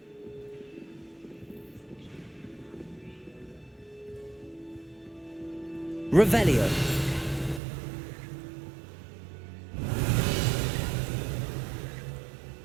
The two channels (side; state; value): left; drops out; at 7.6 s